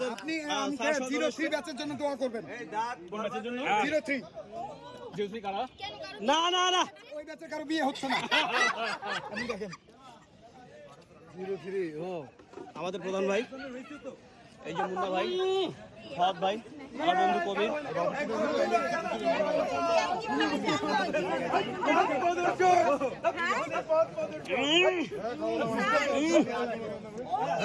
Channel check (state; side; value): identical; both; correlation 1.00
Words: আপনি আমাকে 03 ব্যাচের জন্য দোয়া করবেন। কোন ব্যাচের জন্য 03 জিওসি কারা না না না ওই ব্যাচের কারো বিয়ে হচ্ছে না। আপনি দেখেন 03 ও আমাদের প্রধান ভাই এই যে মুন্না ভাই ফাদ ভাই আমার বন্ধু কবির